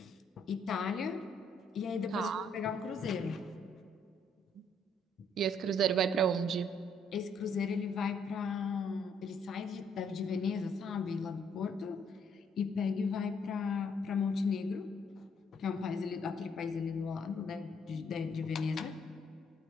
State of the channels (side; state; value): both; normal; correlation 0.68